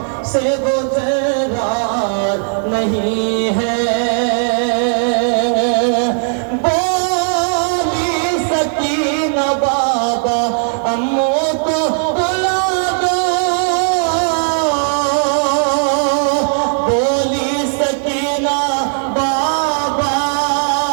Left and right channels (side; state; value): left; silent; digital silence